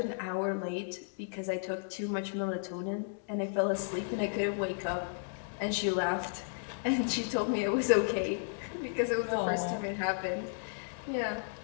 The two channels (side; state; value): right; silent; digital silence